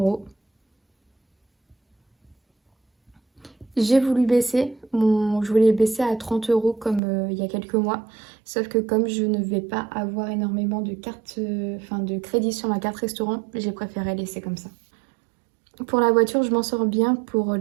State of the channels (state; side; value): drops out; left; at 7.0 s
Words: J'ai voulu baisser, je voulais baisser à 30 € comme il y a quelques mois. Sauf que comme je ne vais pas avoir énormément de cartes, de crédit sur ma carte restaurant, j'ai préféré laisser comme ça. Pour la voiture, je m'en sors bien pour